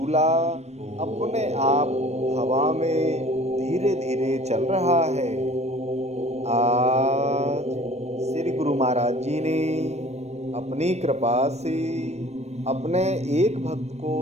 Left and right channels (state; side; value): late; left; 0.31 ms